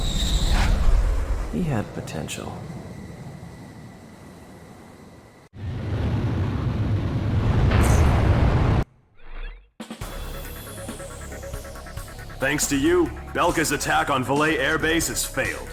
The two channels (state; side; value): identical; both; correlation 1.00